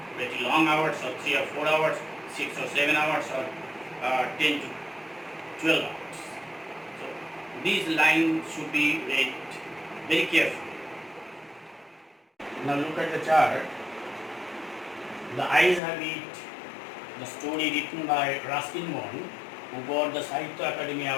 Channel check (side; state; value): right; drops out; at 15.8 s